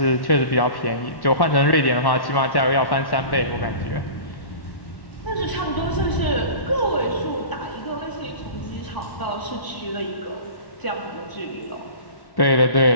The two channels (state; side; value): late; right; 1.1 ms